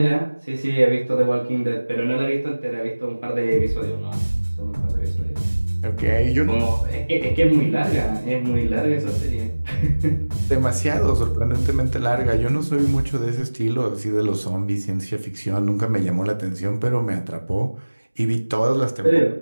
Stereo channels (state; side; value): inverted; both; correlation -1.00